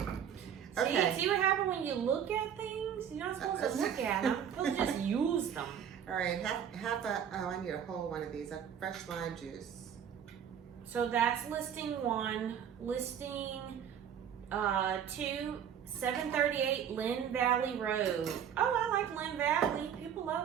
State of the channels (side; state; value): left; quieter; 8.7 dB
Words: Okay. See what happens when you look at things? You're not supposed to look at them. You're supposed to just use them. All right, I need a whole one of these. A fresh lime juice. So that's listing 1. Listing 2, 738 Lynn Valley Road. Oh, I like Lynn Valley. People